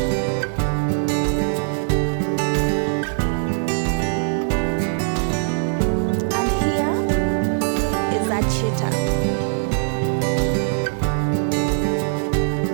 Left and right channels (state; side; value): silent; left; 62 dB below the other